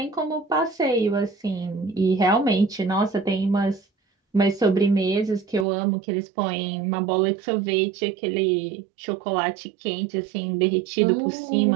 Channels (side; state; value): left; drops out; at 5.7 s